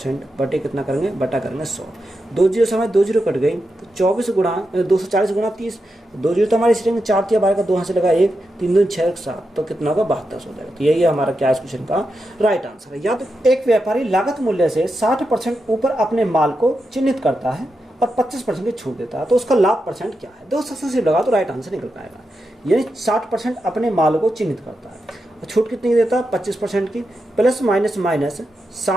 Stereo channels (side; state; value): both; normal; correlation 0.87